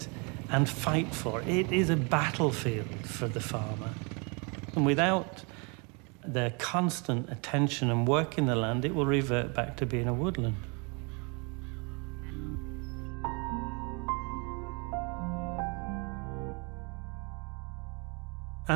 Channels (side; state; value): left; quieter; 32.5 dB